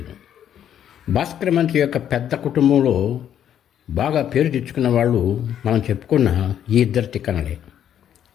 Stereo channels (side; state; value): right; quieter; 9.9 dB